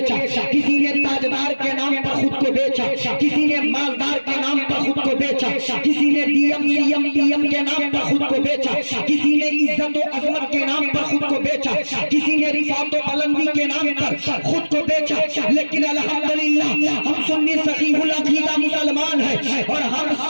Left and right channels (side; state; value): both; inverted; correlation -1.00